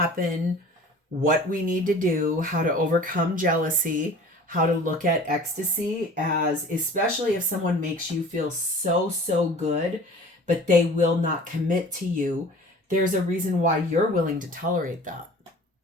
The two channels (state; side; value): normal; both; correlation 0.44